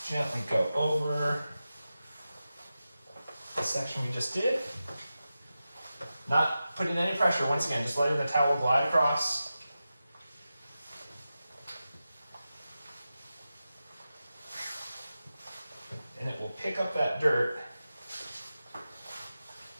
gently go over the section we just did. Not putting any pressure, once again, just letting the towel glide across. And it will pick up that dirt.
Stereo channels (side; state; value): both; inverted; correlation -0.93